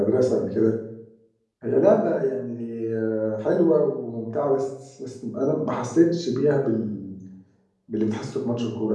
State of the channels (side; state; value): both; identical; correlation 1.00